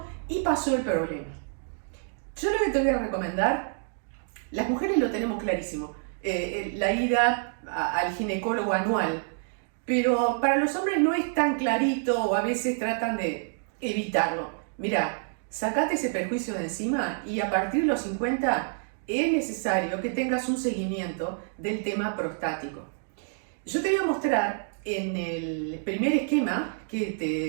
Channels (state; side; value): silent; left; digital silence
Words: y pasó el problema. Yo lo que te voy a recomendar, las mujeres lo tenemos clarísimo, la ida al ginecólogo anual, pero para los hombres no es tan clarito o a veces tratan de evitarlo. Mirá, sacate ese perjuicio de encima y a partir de los 50 es necesario que tengas un seguimiento del tema prostático. Yo te voy a mostrar en el primer esquema que